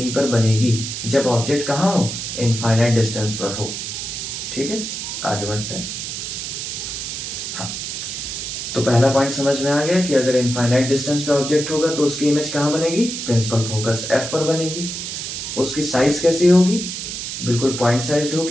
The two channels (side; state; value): right; noise; hiss, 5 dB below the sound